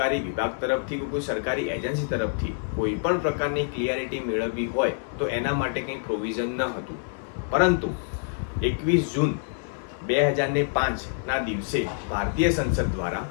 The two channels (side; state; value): right; silent; 61 dB below the other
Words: વિભાગ તરફથી કે કોઈ સરકારી એજન્સી તરફથી કોઈ પણ પ્રકારની ક્લિયરિટી મેળવવી હોય તો એના માટે કંઈ પ્રોવિઝન ન હતું. પરંતુ 21 જૂન 2005ના દિવસે ભારતીય સંસદ દ્વારા